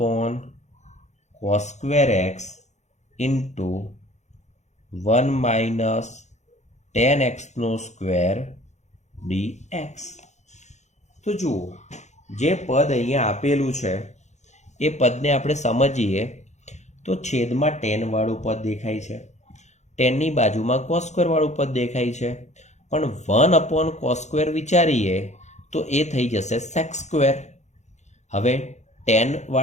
x into 1 - tan x² dx. તો જુઓ, જે પદ અહીંયા આપેલું છે એ પદને આપણે સમજીએ તો છેદમાં tan વાળું પદ દેખાય છે, tanની બાજુમાં cos² વાળું પદ દેખાય છે. પણ 1/cos² વિચારીએ તો એ થઈ જશે sec². હવે tan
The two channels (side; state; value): right; late; 0.33 ms